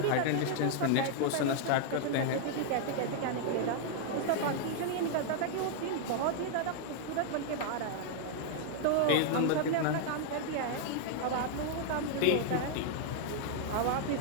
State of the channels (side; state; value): both; different; correlation 0.00